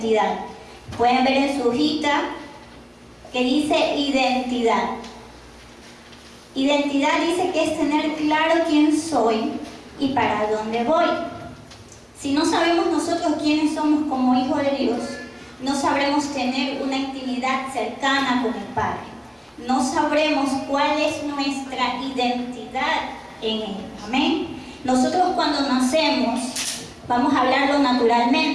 Pueden ver en su hojita que dice identidad. Identidad dice que es tener claro quién soy y para dónde voy. Si no sabemos nosotros quiénes somos como hijos de Dios, no sabremos tener una intimidad cercana con el Padre. No sabremos cuál es nuestra identidad en Él. Amén. Nosotros cuando nacemos, vamos a hablarlo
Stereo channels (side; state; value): both; identical; correlation 1.00